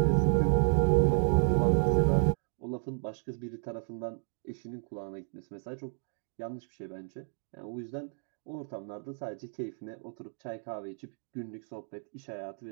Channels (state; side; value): silent; left; 56 dB below the other